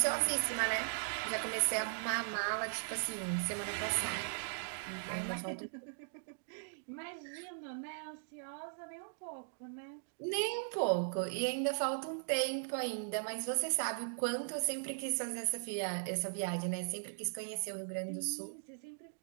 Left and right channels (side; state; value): left; silent; digital silence